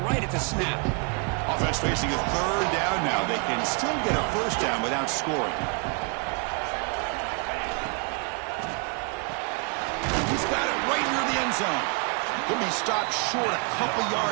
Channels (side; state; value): left; quieter; 36.3 dB